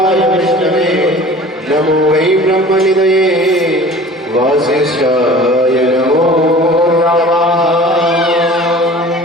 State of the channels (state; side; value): normal; both; correlation 0.43